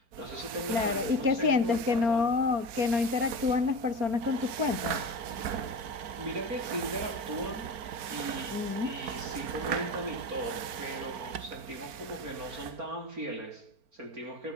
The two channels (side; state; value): left; late; 4.5 ms